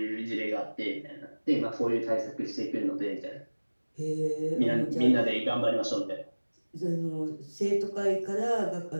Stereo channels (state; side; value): inverted; both; correlation -1.00